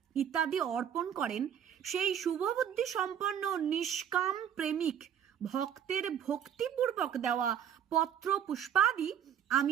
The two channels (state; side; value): quieter; left; 9.2 dB